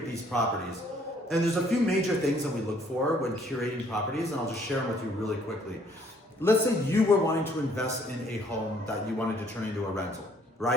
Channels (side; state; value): both; normal; correlation 0.63